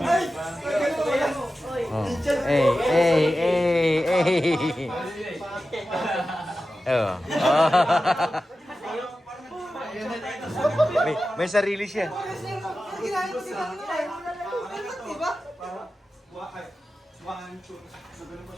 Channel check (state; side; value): normal; both; correlation 0.93